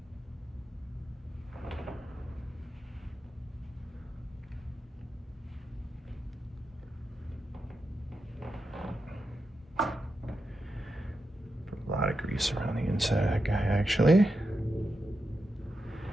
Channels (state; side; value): normal; both; correlation 0.87